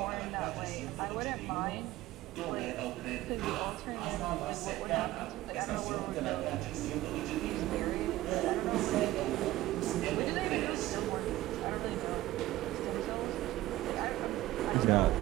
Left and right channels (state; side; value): quieter; left; 16.2 dB